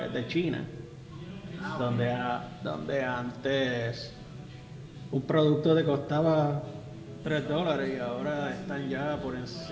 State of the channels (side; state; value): both; identical; correlation 1.00